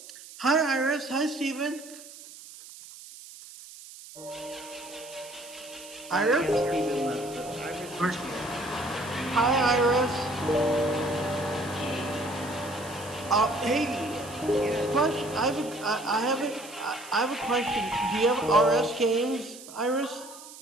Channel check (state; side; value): noise; right; hiss, 16 dB below the sound